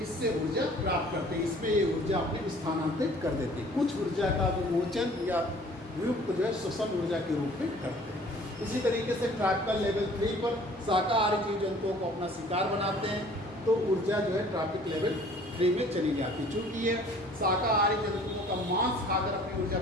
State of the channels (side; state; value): both; normal; correlation 0.52